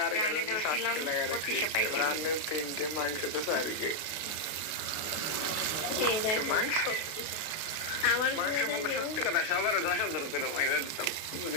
রানে ধরছিলাম 2500 পাইছি। রানের 3টে, মাংস তো 4 মাংস আমার মাংস মানে সত্যি কথা সবার 10,000 করে পয়সা দিতাম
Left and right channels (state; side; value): late; right; 32 ms